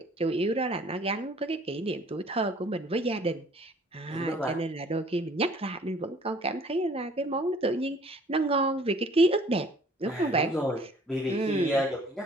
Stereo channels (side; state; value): both; normal; correlation 0.55